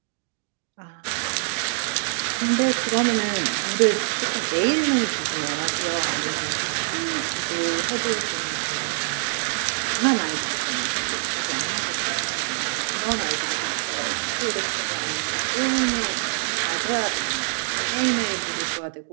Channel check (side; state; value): left; silent; digital silence